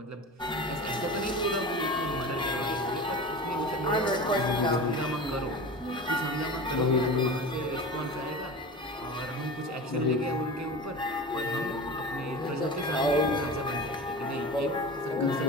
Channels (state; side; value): normal; both; correlation 0.32